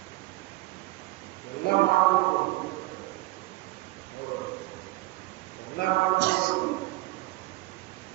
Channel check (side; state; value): left; quieter; 19.1 dB